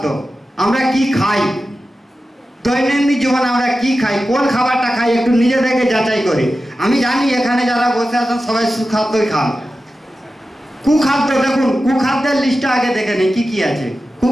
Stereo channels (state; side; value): normal; both; correlation 0.93